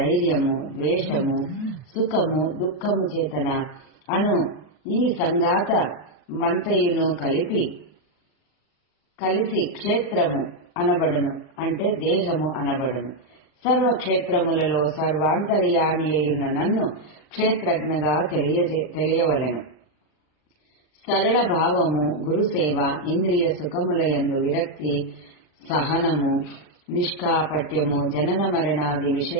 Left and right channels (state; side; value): late; right; 39 ms